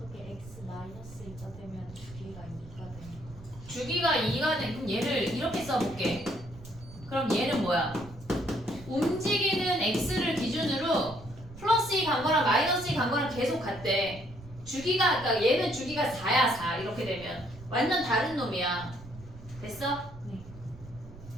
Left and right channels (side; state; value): right; noise; rumble, 17 dB below the sound